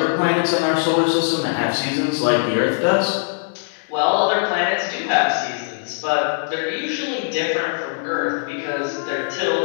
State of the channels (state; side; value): silent; right; digital silence